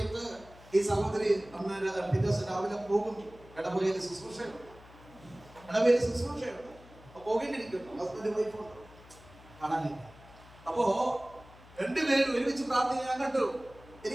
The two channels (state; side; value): noise; left; hum, 22 dB below the sound